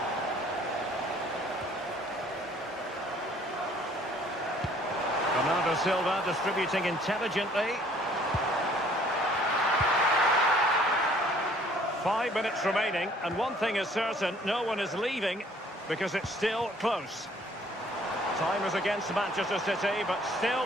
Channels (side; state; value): both; normal; correlation 0.58